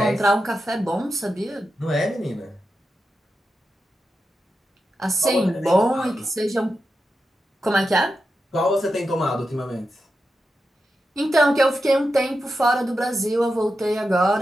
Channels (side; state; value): both; normal; correlation 0.89